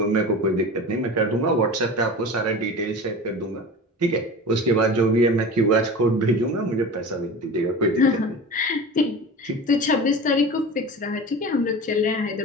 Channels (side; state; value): both; normal; correlation 0.33